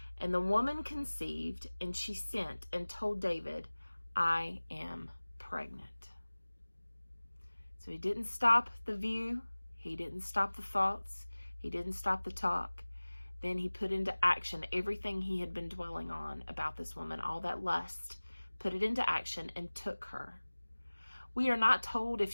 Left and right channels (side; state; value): both; inverted; correlation -1.00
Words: And the woman conceived, and she sent and told David, I am pregnant. So he didn't stop the view. He didn't stop the thoughts. He didn't stop the talk. Then he put into action everything he had been dwelling on about this woman, all that lust, put it into action and took her. We are not told if